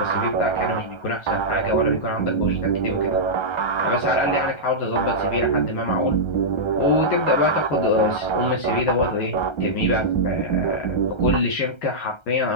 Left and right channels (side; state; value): right; late; 1.3 ms